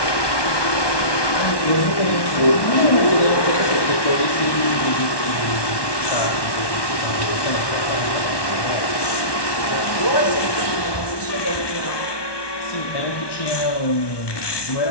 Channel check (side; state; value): right; late; 1.1 ms